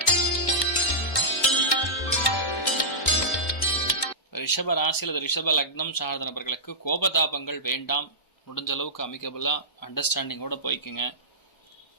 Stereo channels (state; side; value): late; right; 1.1 ms